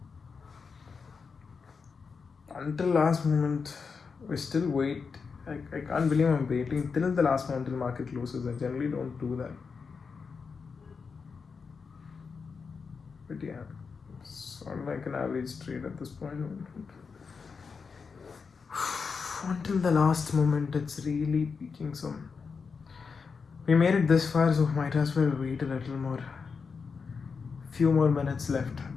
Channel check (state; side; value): quieter; right; 5.3 dB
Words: Until last moment, we still wait. I can't believe I'm waiting till the last moment till market closes. I generally don't do that. But yeah, it's sort of like an average trade at this point. Until the last moment, it's really peaking some. We made it this far, so might as well wait a little more. Few more minutes left.